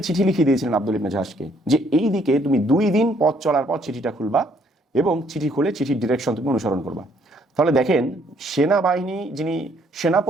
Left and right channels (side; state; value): both; normal; correlation 0.66